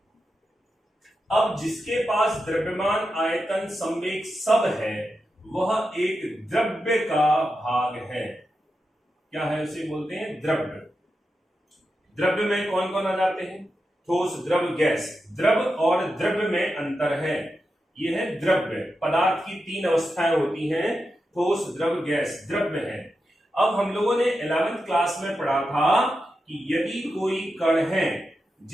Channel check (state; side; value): normal; both; correlation 0.89